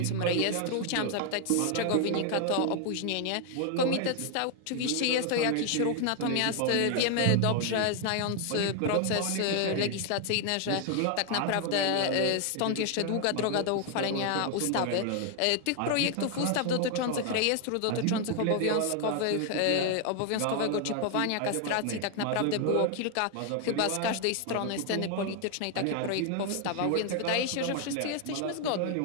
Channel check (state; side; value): different; both; correlation 0.00